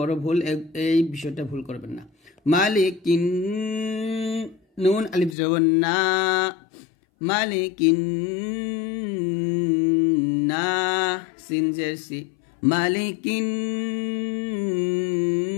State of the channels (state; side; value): drops out; right; at 5.4 s